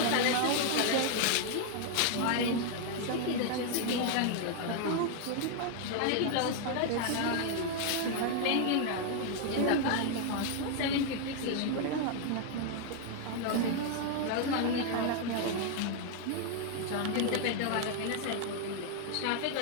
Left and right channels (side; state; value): both; different; correlation 0.00